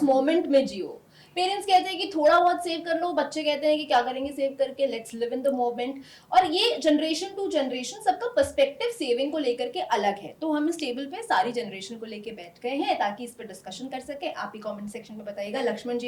मोमेंट में जियो। पेरेंट्स कहते हैं कि थोड़ा बहुत सेव कर लो, बच्चे कहते हैं कि क्या करेंगे सेव करके, let's live in the moment. और ये जनरेशन टू जनरेशन सबका पर्सपेक्टिव सेविंग को लेकर के अलग है। तो हम इस टेबल पे सारी जनरेशन को लेके बैठ गए हैं ताकि इस पर डिस्कशन कर सके। आप ही कमेंट सेक्शन में बताइएगा। लक्ष्मण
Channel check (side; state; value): both; identical; correlation 1.00